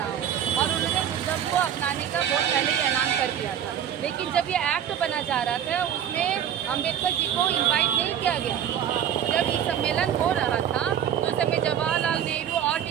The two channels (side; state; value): left; quieter; 9.5 dB